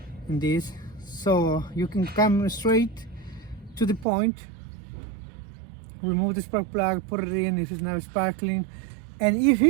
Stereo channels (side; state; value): left; drops out; at 4.0 s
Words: in this. So you can come straight to the point, remove the spark plug, put it in if it's not sparkling. And if